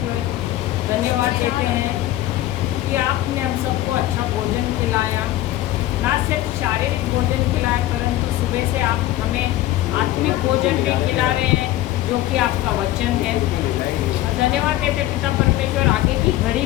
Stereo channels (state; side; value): quieter; right; 14.9 dB